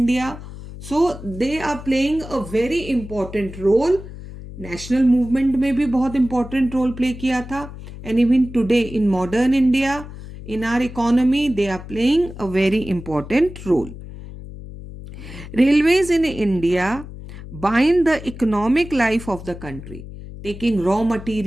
So they are playing a very important role. National movement में भी बहुत important role play किया था. And even today in modern India, in our economy, they are playing a very important role. Railways in India bind the economic life of the country, taking raw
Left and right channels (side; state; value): left; noise; hum, 13 dB below the sound